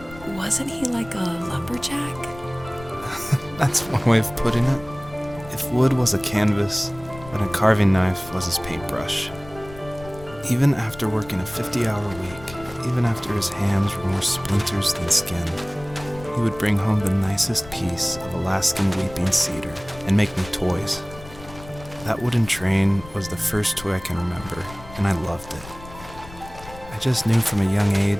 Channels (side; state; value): left; noise; rumble, 17 dB below the sound